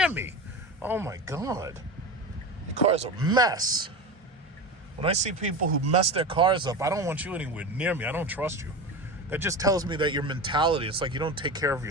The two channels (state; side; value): normal; both; correlation 0.26